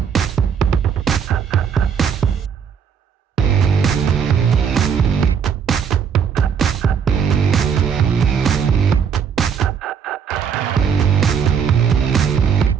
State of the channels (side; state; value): left; quieter; 7.1 dB